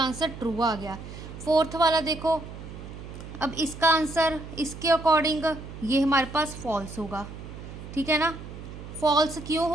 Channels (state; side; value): noise; right; hum, 12 dB below the sound